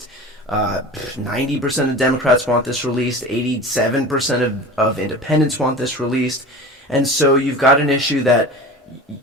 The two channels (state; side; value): normal; both; correlation 0.35